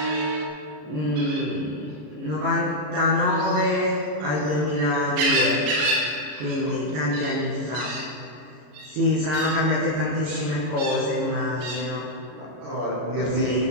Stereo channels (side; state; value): left; late; 33 ms